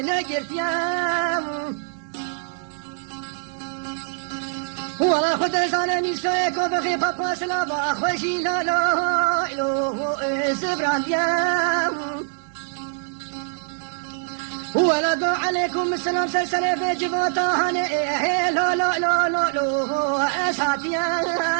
ولا خد زان ميسو كو بخي بابا سلا ما خوشي لو لو لو زبرانديا ولا دو عليكم السلام سلسلة بجبوتا هني لو لو لو لو لو اساتيا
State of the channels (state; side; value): silent; left; digital silence